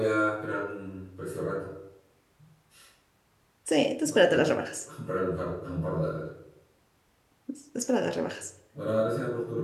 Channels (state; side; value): identical; both; correlation 1.00